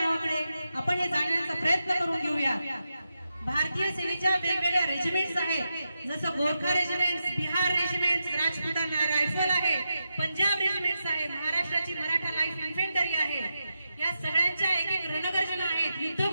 आपण हे जाणण्याचा प्रयत्न करून घेऊया। भारतीय सेनेच्या वेगवेगळ्या रेजिमेंट्स आहेत, जसं Gorkha regiment, Bihar regiment, Rajputana rifle आहे, पंजाब रेजिमेंट्स आहे, महाराष्ट्राची मराठा लाईफ इन्फेंटरी आहे। या सगळ्यांच्या एक एक रणगर्जना आहेत,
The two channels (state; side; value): inverted; both; correlation -0.88